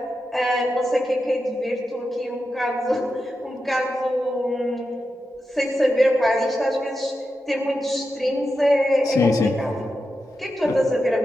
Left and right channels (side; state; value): both; normal; correlation 0.89